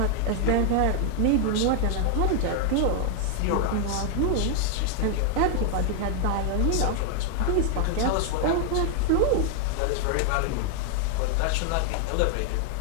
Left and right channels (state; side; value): different; both; correlation 0.00